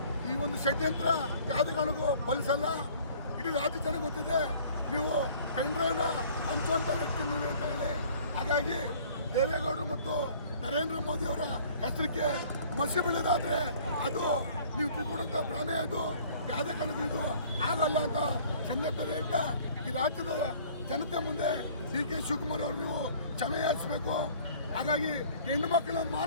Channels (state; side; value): inverted; both; correlation -0.52